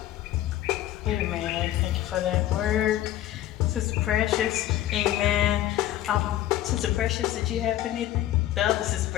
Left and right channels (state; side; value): quieter; right; 13.3 dB